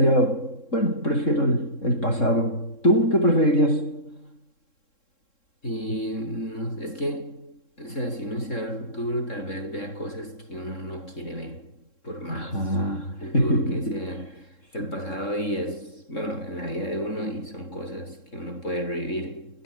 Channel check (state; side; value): late; right; 3.7 ms